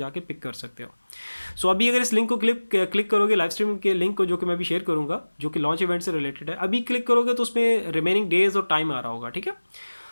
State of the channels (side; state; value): both; inverted; correlation -1.00